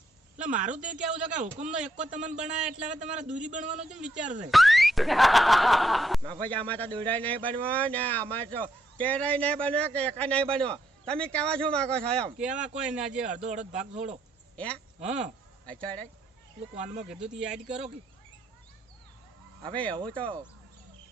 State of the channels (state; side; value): normal; both; correlation 0.76